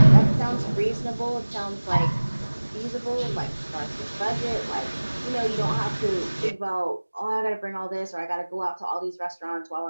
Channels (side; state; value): both; inverted; correlation -1.00